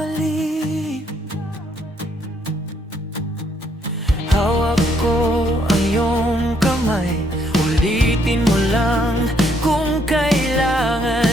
Hawak ko ang iyong kamay, ulitin mo lang kung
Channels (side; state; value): both; normal; correlation 0.70